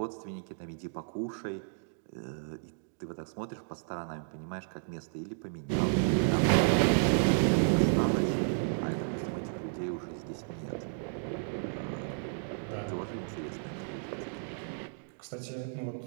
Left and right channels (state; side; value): silent; left; digital silence